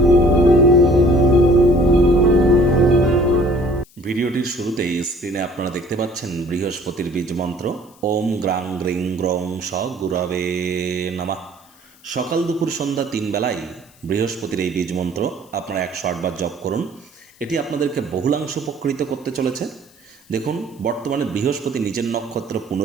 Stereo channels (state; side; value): noise; left; hiss, 28 dB below the sound